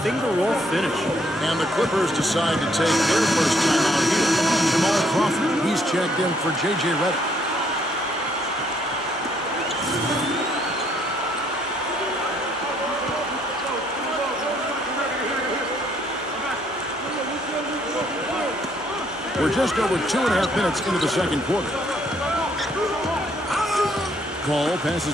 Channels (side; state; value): both; normal; correlation 0.68